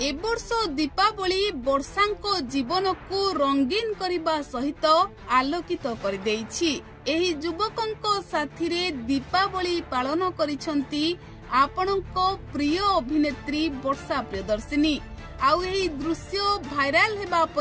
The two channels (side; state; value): both; identical; correlation 1.00